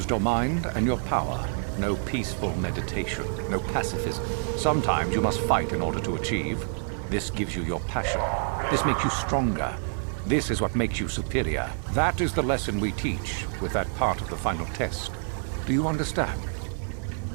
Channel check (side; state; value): left; silent; 60 dB below the other